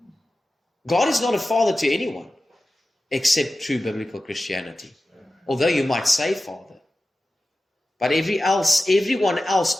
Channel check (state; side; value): normal; both; correlation 0.94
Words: God is not a father to anyone except true biblical Christianity. Although you might say Father. But everyone else